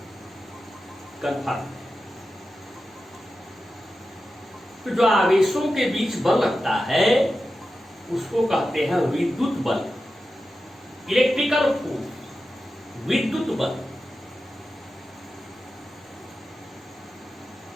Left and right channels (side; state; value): both; normal; correlation 0.92